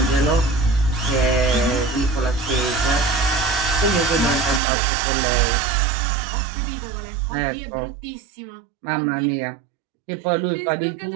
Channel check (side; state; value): left; drops out; at 4.6 s